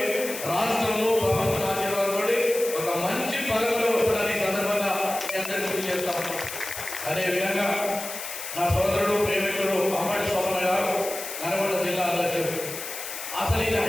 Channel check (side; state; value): left; noise; hiss, 8 dB below the sound